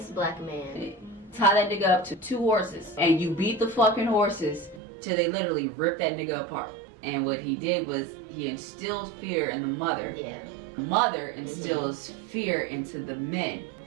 black man. Tie that nigga up to 2 horses, and you beat the fucking horses till they literally rip that nigga apart. And what he did was he instilled fear in the mother. Yeah. Mother instills fear into the men.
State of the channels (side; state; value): left; drops out; at 4.8 s